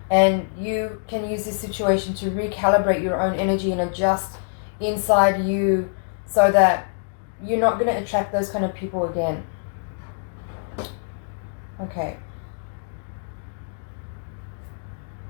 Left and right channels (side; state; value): right; silent; digital silence